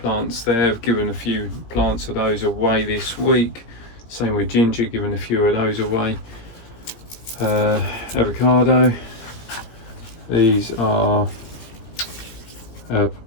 plants there. I've given a few plants of those away this week. Same with ginger, given a few of those away. Avocado. These are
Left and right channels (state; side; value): late; right; 17 ms